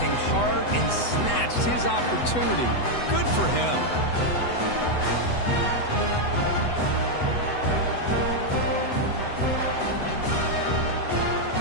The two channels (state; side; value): late; right; 8.0 ms